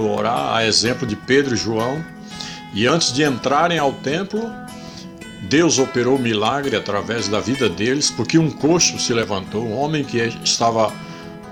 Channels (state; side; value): identical; both; correlation 1.00